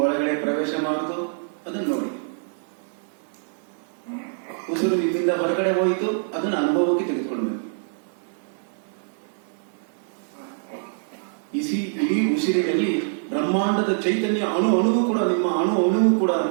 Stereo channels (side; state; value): left; silent; digital silence